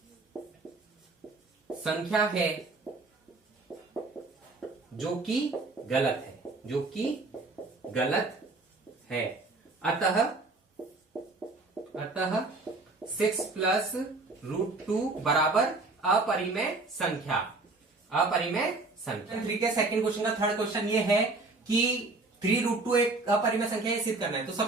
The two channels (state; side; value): quieter; left; 3.4 dB